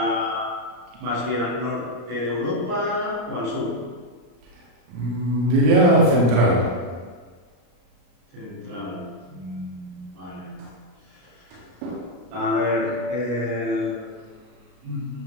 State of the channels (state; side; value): late; left; 33 ms